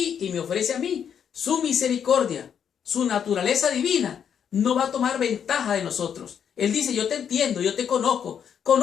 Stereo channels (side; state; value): right; quieter; 8.1 dB